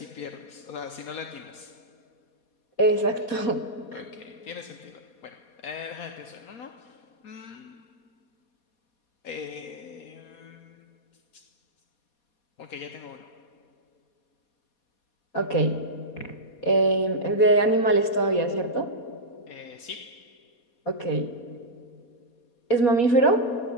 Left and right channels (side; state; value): right; late; 4.2 ms